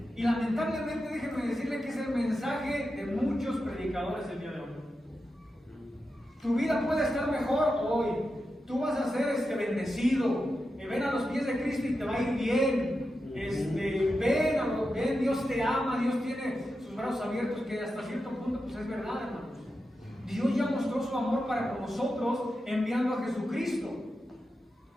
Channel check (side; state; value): both; normal; correlation 0.89